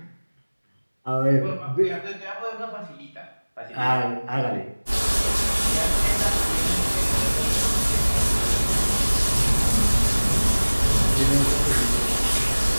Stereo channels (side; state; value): both; inverted; correlation -1.00